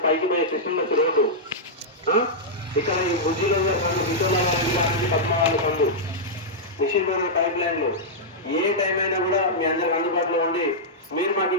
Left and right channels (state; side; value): normal; both; correlation -0.09